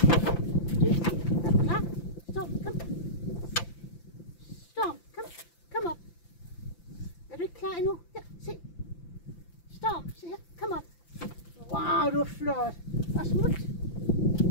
Dygtig. Er du klar? Stop. Kom. Storm, kom op. Er du ikke klar endnu? Her, se. Storm, se her. Kom op. Wow, du er flot. Og smut.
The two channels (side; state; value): right; late; 5.9 ms